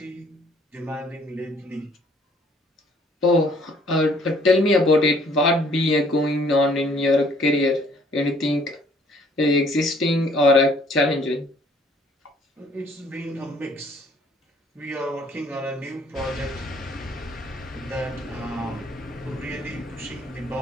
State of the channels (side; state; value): both; normal; correlation 0.60